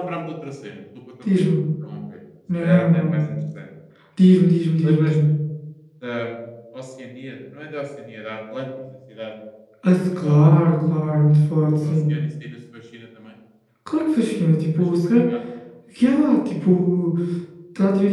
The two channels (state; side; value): identical; both; correlation 1.00